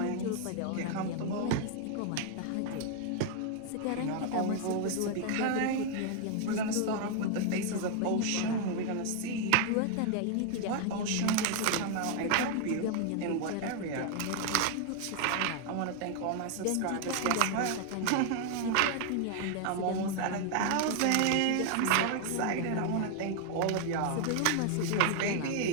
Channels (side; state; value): both; different; correlation 0.00